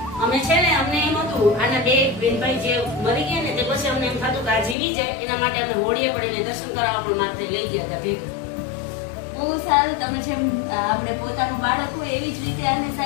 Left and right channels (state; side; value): drops out; right; at 4.8 s